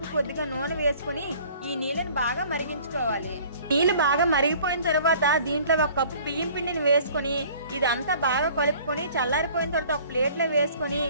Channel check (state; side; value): inverted; both; correlation -0.51